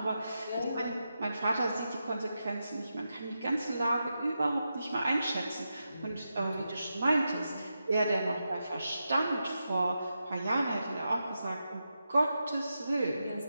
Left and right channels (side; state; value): both; inverted; correlation -0.88